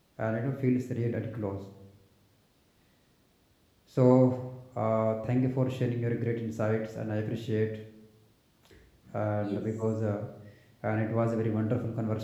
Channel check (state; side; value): identical; both; correlation 1.00